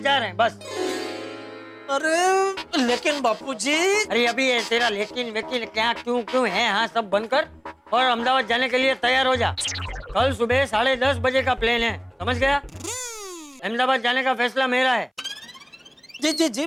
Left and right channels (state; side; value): identical; both; correlation 1.00